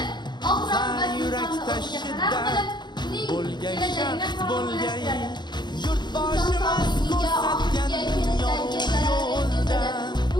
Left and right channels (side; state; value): right; late; 0.21 ms